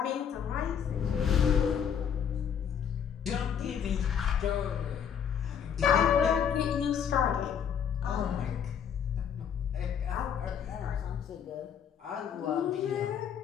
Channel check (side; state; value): right; quieter; 8.0 dB